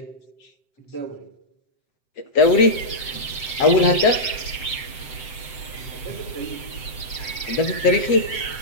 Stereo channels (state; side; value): late; right; 7.7 ms